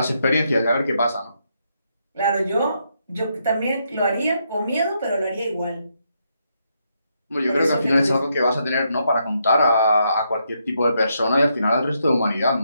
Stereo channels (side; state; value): both; inverted; correlation -0.78